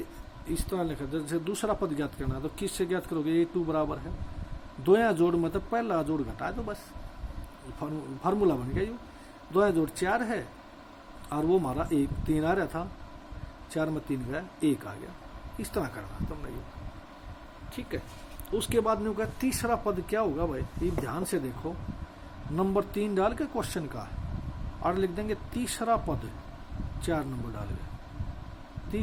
इस तरह लिखा, जैसे दूसरा पद ज्ञात करना है तो किससे ज्ञात करोगे, A2 बराबर है 2 जोड़ मत पहला जोड़ घटा दो बस, फार्मूला बन गया। यो 2 जोड़ 4 है और वो हमारा 1 3 आ रहा था, 4 में 3 गया 1 आ गया, इस तरह करना तुमने ये, ठीक है। उसके बाद में होगा तीसरा पद क्या होगा भाई, ये ध्यान से देखो, नंबर 3 डाल के क्वेश्चन का और लिख देंगे तीसरा पद, 4 नंबर डाल के,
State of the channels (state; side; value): identical; both; correlation 1.00